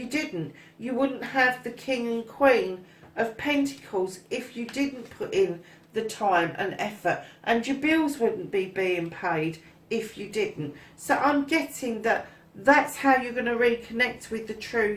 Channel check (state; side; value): identical; both; correlation 1.00